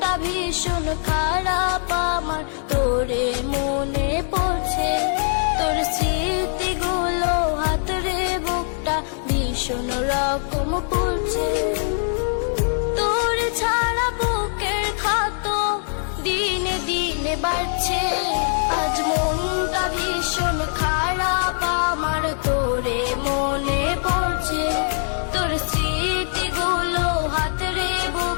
ভীষণ খারাপ আমার, তোরে মনে পড়ছে। তোর স্মৃতিগুলো হাতরে বুকটা ভীষণ রকম পড়ছে। তোর ছাড়া বুকের ক্ষত দিনে দিনে বাড়ছে। আজ মনটা ভীষণ খারাপ আমার, তোরে মনে পড়ছে। তোর স্মৃতিগুলো হাতরে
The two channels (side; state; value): right; silent; 62 dB below the other